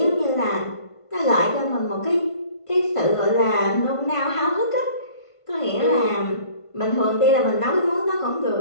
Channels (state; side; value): late; right; 1.5 ms